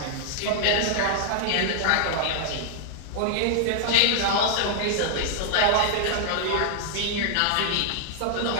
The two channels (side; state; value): both; different; correlation -0.01